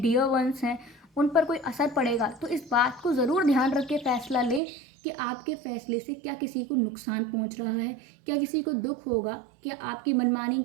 डियर वंस हैं, उन पर कोई असर पड़ेगा, तो इस बात को ज़रूर ध्यान रख के फैसला लें कि आपके फैसले से क्या किसी को नुकसान पहुंच रहा है, क्या किसी को दुख होगा, क्या आपकी मनमानी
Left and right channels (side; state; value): left; drops out; at 4.6 s